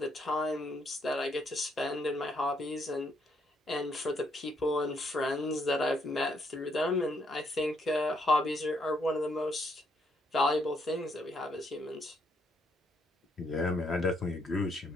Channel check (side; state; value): both; normal; correlation 0.73